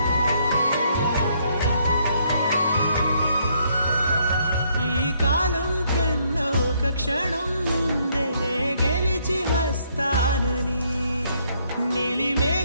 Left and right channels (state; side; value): inverted; both; correlation -0.70